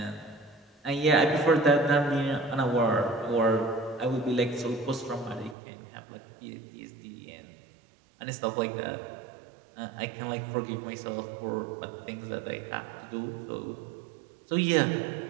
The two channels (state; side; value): drops out; left; at 5.6 s